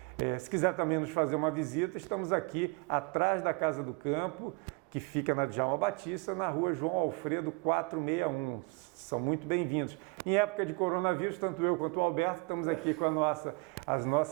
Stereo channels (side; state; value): left; quieter; 28.3 dB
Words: Se quiser também nos fazer uma visita, estamos aqui atrás da Casa do Campo, que fica na Djalma Batista, na rua João Alfredo 461. São muito bem-vindos. Em época de coronavírus, tanto eu quanto o Alberto estamos aqui com os